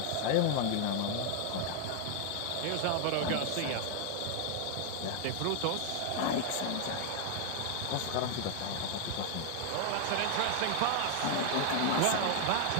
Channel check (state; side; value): different; both; correlation 0.00